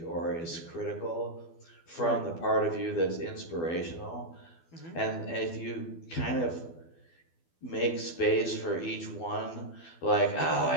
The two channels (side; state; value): right; late; 12 ms